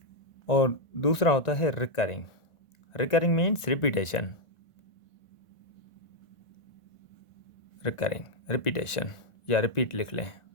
और दूसरा होता है रिकरिंग मीन्स रिपीटेशन। रिपीटेशन या रिपीट लिख लें।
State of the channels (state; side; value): late; right; 1.5 ms